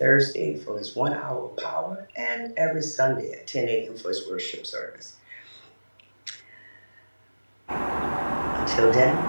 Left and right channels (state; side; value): inverted; both; correlation -1.00